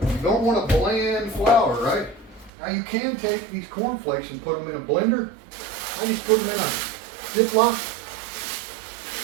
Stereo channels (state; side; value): drops out; left; at 2.5 s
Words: You don't want a bland flour, right? Now you can take these cornflakes and put them in a blender. I just put them in a Ziploc.